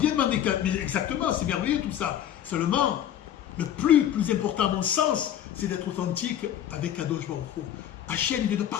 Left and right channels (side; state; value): right; quieter; 10.6 dB